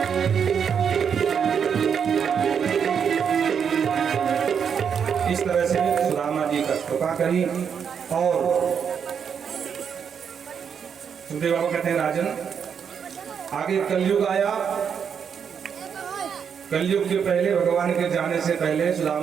इस तरह से सुदामा जी का कृपा करी। और सुखदेव बाबा कहते हैं राजन, आगे कलयुग आया। कलयुग के पहले, भगवान के जाने से पहले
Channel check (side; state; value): left; quieter; 7.2 dB